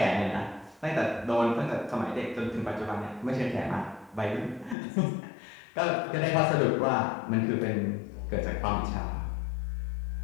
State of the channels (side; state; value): right; drops out; at 4.8 s